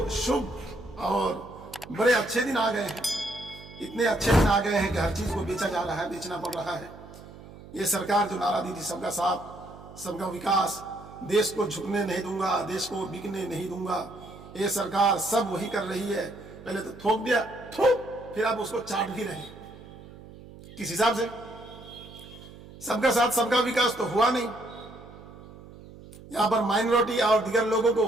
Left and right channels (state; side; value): noise; right; hum, 18 dB below the sound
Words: शुभ और बड़े अच्छे दिन आ गए हैं, इतने अच्छे दिन आ गए हैं कि हर चीज़ को बेचा जा रहा है, बेचना पड़ रहा है। ये सरकार जो नारा दी थी सबका साथ सबका विकास, देश को झुकने नहीं दूंगा, देश को बिकने नहीं दूंगा, ये सरकार सब वही कर रही है। पहले तो थोक दिया, थोक, फिर आप उसको चाट भी रहे हैं। किस हिसाब से? सबका साथ सबका विकास तो हुआ नहीं। यहां पर माइनॉरिटी और दीगर लोगों